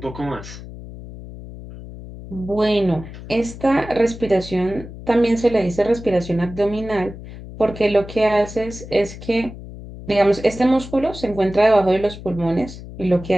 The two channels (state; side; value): noise; left; hum, 13 dB below the sound